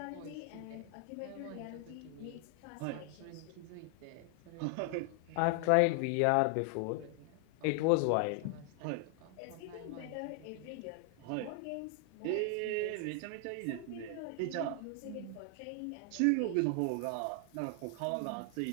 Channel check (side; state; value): both; different; correlation 0.00